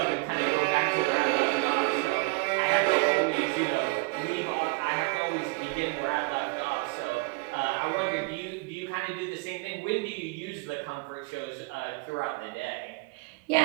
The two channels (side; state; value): left; quieter; 28.5 dB